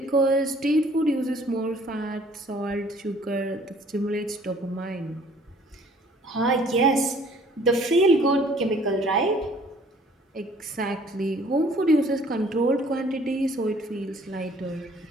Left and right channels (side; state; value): both; normal; correlation 0.56